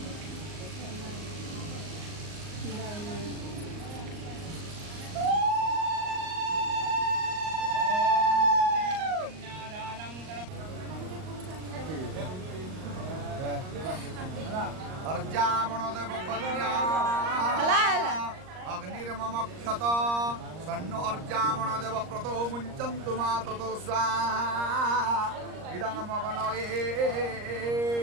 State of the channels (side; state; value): left; late; 38 ms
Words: अर्जामणदेव कन्या अग्निर्ममक्षत सन्नो अर्जामणदेव प्रतो मुञ्चन्तु मा ततो स्वाहा इदं मगनये